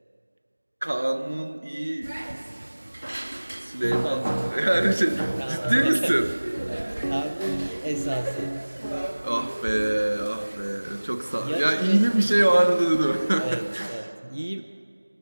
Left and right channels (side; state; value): both; inverted; correlation -1.00